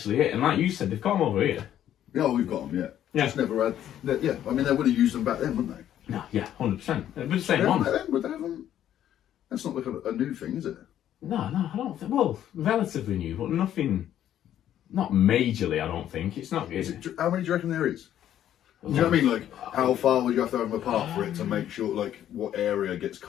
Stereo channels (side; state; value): right; quieter; 11.1 dB